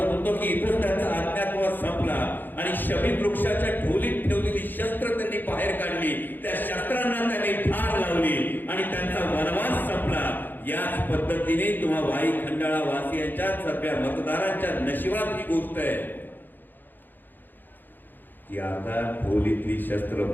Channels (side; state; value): right; late; 0.090 ms